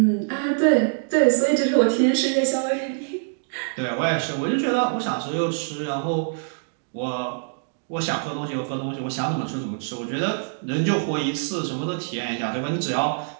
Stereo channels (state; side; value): silent; left; digital silence